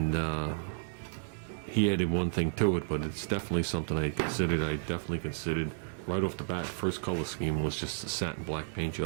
he added one thing to it, but it's definitely something I considered. I definitely considered right off the bat. First color scheme was just a satin black paint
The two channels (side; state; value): left; silent; digital silence